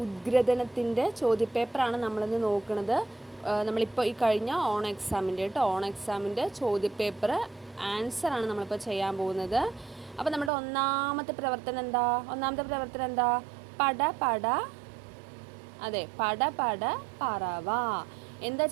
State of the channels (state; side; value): drops out; left; at 10.5 s